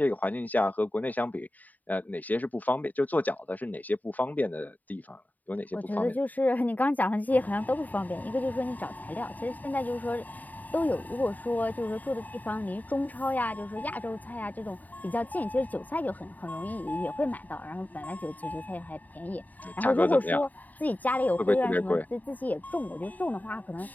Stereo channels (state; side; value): late; right; 0.080 ms